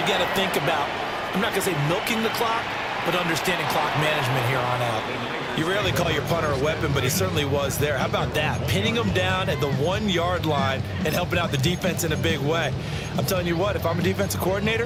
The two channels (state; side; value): identical; both; correlation 1.00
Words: got to think about, I'm not going to say milking the clock, but understanding clock management here on out. You rarely call your punter a weapon, but he certainly was there. How about that? Pinning him down at the 1-yard line and helping out the defense in a big way. I'm telling you what, if I'm a defensive coordinator,